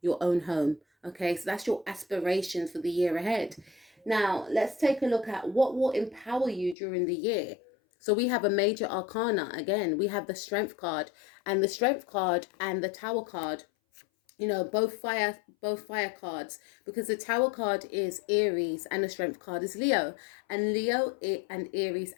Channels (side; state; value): right; drops out; at 6.8 s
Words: your own home. Okay, so that's your aspirations for the year ahead. Now let's take a look at what will empower you during the year. So we have a major arcana. Again, we have the Strength card, and the Strength card and the Tower card, you know, both fire cards, because the Tower card is Aries and the Strength card is Leo. And Leo and Aries